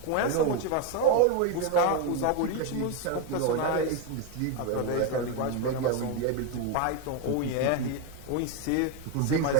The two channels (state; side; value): different; both; correlation 0.02